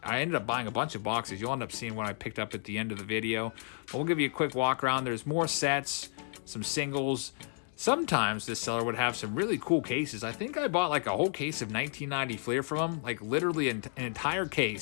I ended up buying a bunch of boxes. You'll end up seeing what I picked up at the end of the video. But we'll give you a quick walk around. There's more sets, some singles. Sometimes this seller would have some really cool cases. I think I bought like a whole case of 1990 Fleer from him, like literally an entire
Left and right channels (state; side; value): silent; right; 57 dB below the other